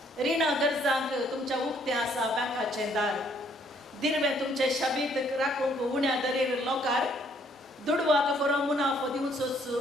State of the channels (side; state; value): both; normal; correlation 0.66